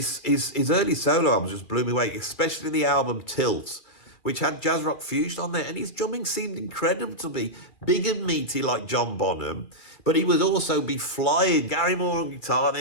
early solo albums just blew me away, especially the album Tilt, which had jazz rock fusion on there. And his drumming seemed incredible to me. Big and meaty like John Bonham, but he would also be flying. Gary Moore on guitar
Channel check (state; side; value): late; right; 2.4 ms